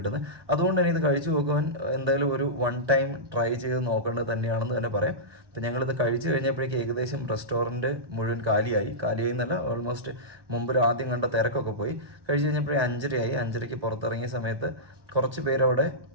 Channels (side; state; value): left; late; 1.1 ms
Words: അതുകൊണ്ട് തന്നെ ഇത് കഴിച്ചു നോക്കുവാൻ എന്തായാലും ഒരു 1 ടൈം ട്രൈ ചെയ്ത് നോക്കേണ്ടത് തന്നെയാണെന്ന് തന്നെ പറയാം. അപ്പോൾ ഞങ്ങളിത് കഴിച്ചു കഴിഞ്ഞപ്പോഴേക്ക് ഏകദേശം റെസ്റ്റോറൻറ്റ് മുഴുവൻ കാലിയായി എന്നല്ല, ഓൾമോസ്റ്റ് മുമ്പിൽ ആദ്യം കണ്ട തിരക്കൊക്കെ പോയി. കഴിച്ച് കഴിഞ്ഞപ്പോഴേ 5:30 പുറത്തിറങ്ങിയ സമയത്ത് കുറച്ച് പേരവിടെ